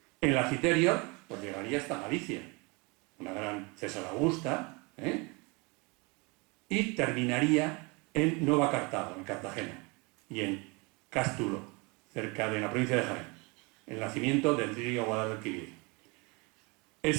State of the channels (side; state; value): left; quieter; 28.5 dB